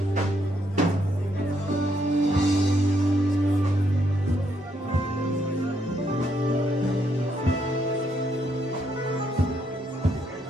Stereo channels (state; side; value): normal; both; correlation 0.75